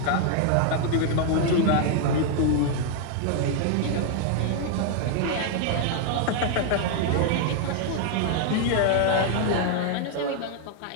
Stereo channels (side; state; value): both; different; correlation 0.00